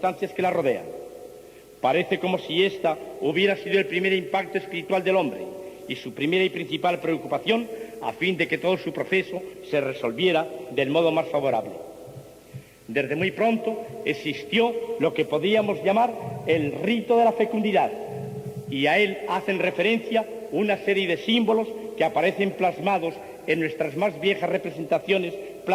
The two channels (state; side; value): identical; both; correlation 1.00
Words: que la rodean. Parece como si esta hubiera sido el primer impacto espiritual del hombre y su primera y principal preocupación a fin de que todo su proceso se resolviera del modo más favorable. Desde muy pronto existió lo que podríamos llamar el rito de la fecundidad, y a él hacen referencia una serie de símbolos que aparecen plasmados en nuestras más viejas representaciones